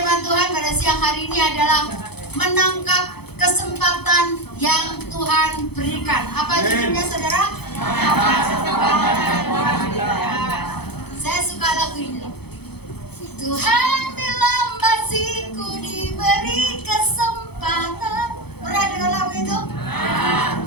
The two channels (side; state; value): right; late; 0.98 ms